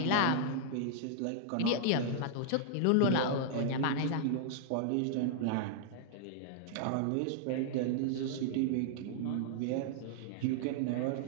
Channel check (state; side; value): different; both; correlation -0.01